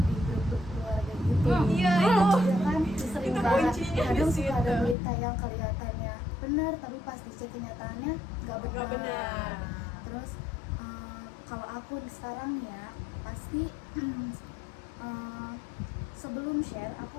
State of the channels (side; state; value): right; drops out; at 5.0 s